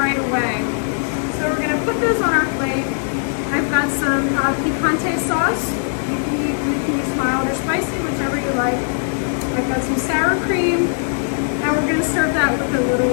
away. So we're going to put those on our plate. I've got some picante sauce. You can use mild or spicy, whichever you like. I've got some sour cream. And we're going to serve that with a little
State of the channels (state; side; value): silent; right; 66 dB below the other